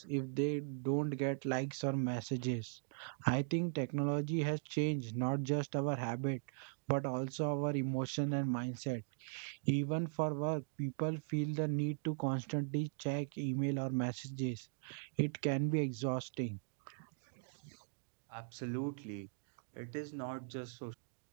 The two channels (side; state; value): left; silent; digital silence